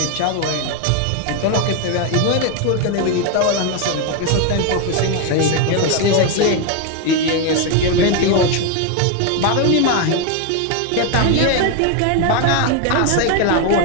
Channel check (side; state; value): both; different; correlation 0.01